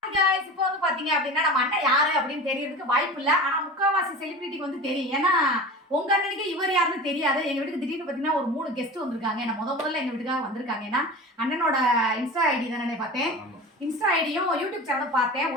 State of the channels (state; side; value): normal; both; correlation 0.33